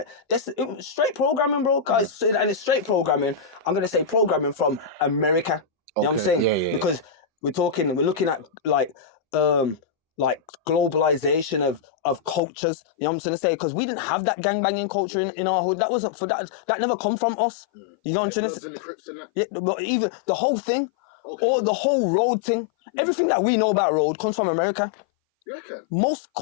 it was straight programming, bro. Guys, and it's straight programming. I'm gonna say programming from America. You know what I'm saying? Because we're looking at like globalization of cultures. You know what I'm trying to say? Because we didn't have that gangbanging culture in our hood. That wasn't for that. That never come from us. You know what I'm trying to say? The Bloods and the Crips and that? Yeah, but even the whole thing. Okay. The whole road thing. Everything that we know about road comes from America. You reckon? Most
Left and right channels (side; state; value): right; drops out; at 12.4 s